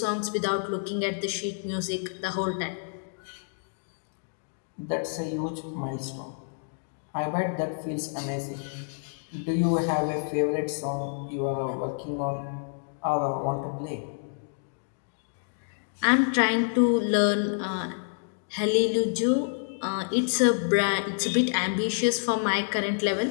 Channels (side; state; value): right; silent; digital silence